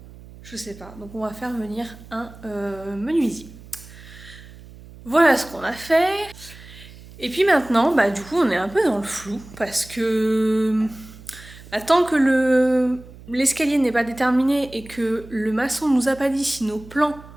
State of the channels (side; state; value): right; noise; hum, 19 dB below the sound